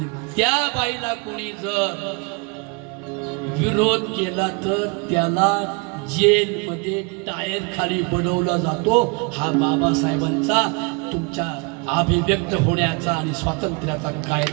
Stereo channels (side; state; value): left; quieter; 32.0 dB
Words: त्या बाईला कोणी जर विरोध केला तर त्याला जेलमध्ये टायर खाली बनवला जातो. हा बाबासाहेबांचा तुमच्या अभिव्यक्त होण्याचा आणि स्वातंत्र्याचा